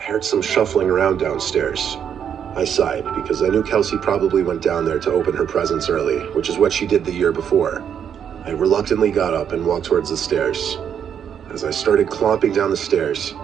heard some shuffling around downstairs. I sighed because I knew Kelsey probably went down there to open her presents early, which is what she did the year before. I reluctantly got up and walked towards the stairs. As I started clomping down the stairs,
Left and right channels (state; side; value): quieter; left; 8.4 dB